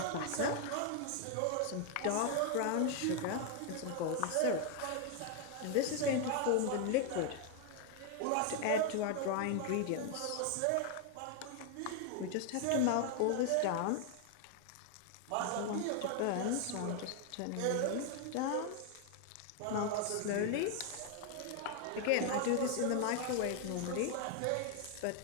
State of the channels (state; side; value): different; both; correlation 0.00